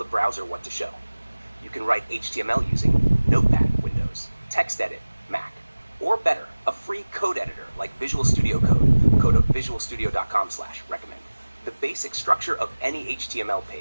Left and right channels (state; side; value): inverted; both; correlation -1.00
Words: browser what to show. You can write HTML using Notepad, Windows, TextEdit, Mac, or better, a free code editor like Visual Studio Code, code of visualstudio.com/recommend. The basic structure of any HTML